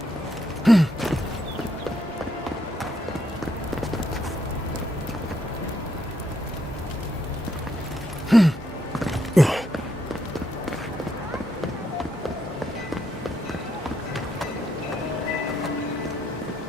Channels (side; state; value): both; normal; correlation 0.76